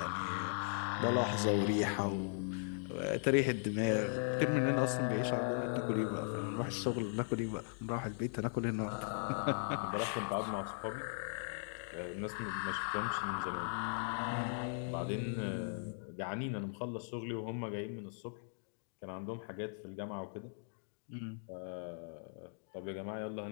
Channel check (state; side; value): silent; right; digital silence